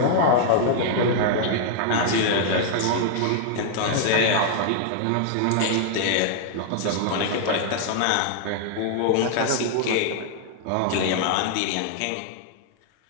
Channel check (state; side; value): different; both; correlation -0.01